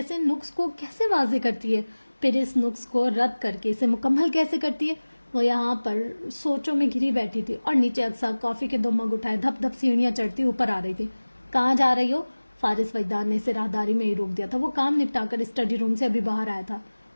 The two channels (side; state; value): both; inverted; correlation -1.00